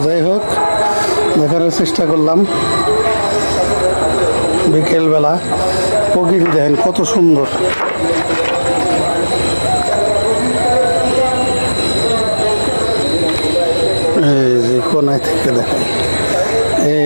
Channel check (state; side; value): inverted; both; correlation -1.00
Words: যাই হোক, দেখানোর চেষ্টা করলাম। বিকেলবেলা প্রকৃতি দেখেন কত সুন্দর। এই যে কোনায় থেকে দেখেন,